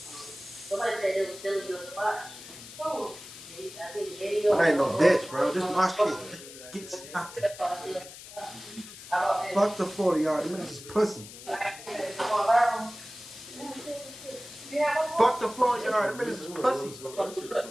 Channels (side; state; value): left; noise; hiss, 15 dB below the sound